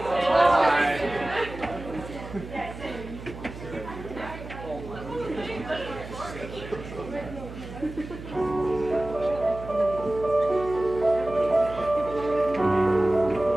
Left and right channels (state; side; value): noise; right; hum, 12 dB below the sound